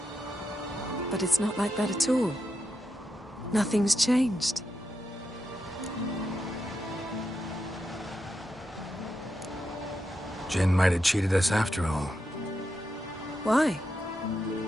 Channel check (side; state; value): both; normal; correlation 0.85